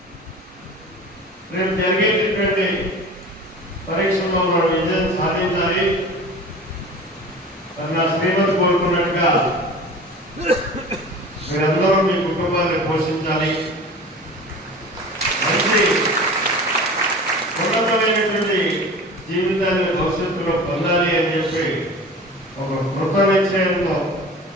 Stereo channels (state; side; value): normal; both; correlation 0.38